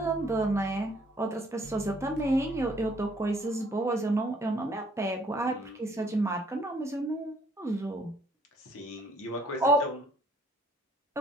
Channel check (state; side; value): normal; both; correlation 0.63